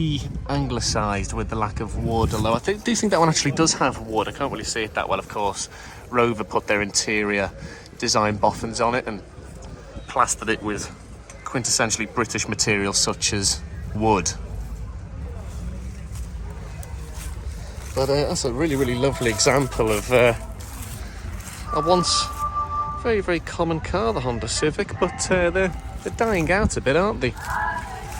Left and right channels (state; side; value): identical; both; correlation 1.00